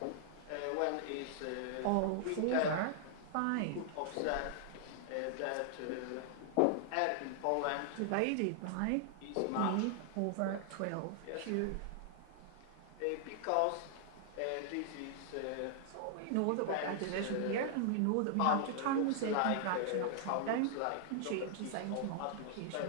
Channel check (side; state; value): both; different; correlation -0.01